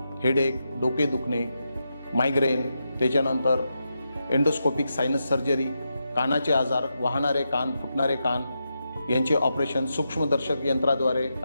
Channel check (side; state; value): both; inverted; correlation -0.86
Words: हेडेक, डोके दुखणे, मायग्रेन, त्याच्यानंतर एंडोस्कोपिक सायनस सर्जरी, कानाचे आजार, वाहणारे कान, फुटणारे कान यांचे ऑपरेशन, सूक्ष्मदर्शक यंत्राद्वारे